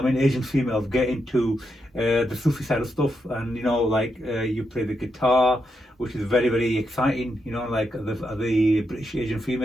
Asian females get into the Sufi side of stuff, and you play the guitar, which is very very exciting. Like the British Asian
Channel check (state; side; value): normal; both; correlation 0.83